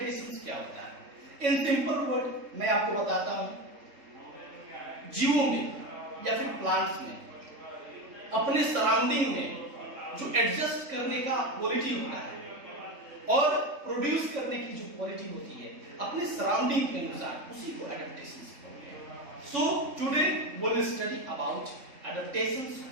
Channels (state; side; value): late; left; 3.5 ms